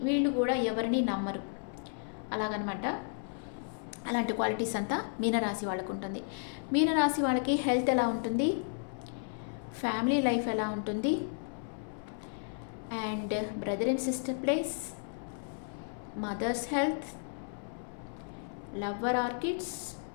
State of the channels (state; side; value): silent; right; 56 dB below the other